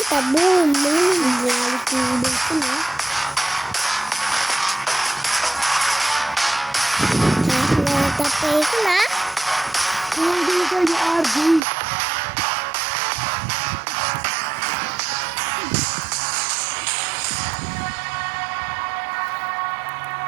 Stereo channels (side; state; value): left; drops out; at 11.6 s